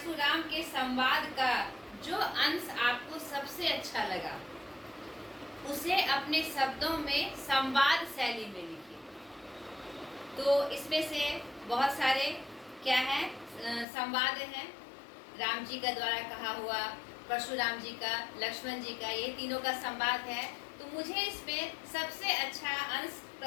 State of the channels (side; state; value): right; drops out; at 13.9 s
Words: के संवाद का जो अंश आपको सबसे अच्छा लगा उसे अपने शब्दों में संवाद शैली में लिखिए। तो इसमें से बहुत सारे क्या है? संवाद हैं। राम जी का द्वारा कहा हुआ, परशुराम जी का, लक्ष्मण जी का, ये तीनों का संवाद है। तो मुझे इसमें सबसे अच्छा अंश